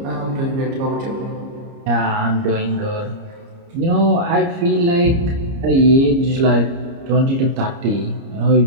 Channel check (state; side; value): late; left; 30 ms